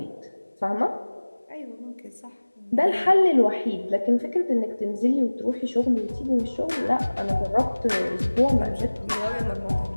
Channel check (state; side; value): inverted; both; correlation -1.00